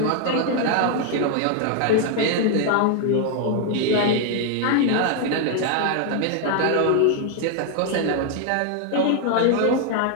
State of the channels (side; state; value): both; different; correlation 0.00